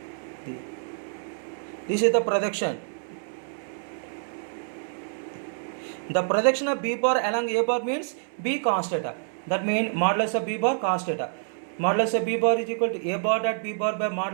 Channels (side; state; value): left; silent; 60 dB below the other